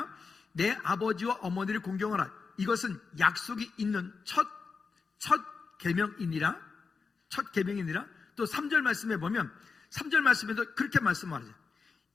내 아버지와 어머니를 공경하라. 이것은 약속이 있는 첫 계명이니라. 첫 계명이니라. 또 3절 말씀에 보면, 3절 말씀에도 그렇게 말씀하죠.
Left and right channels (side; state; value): right; quieter; 4.9 dB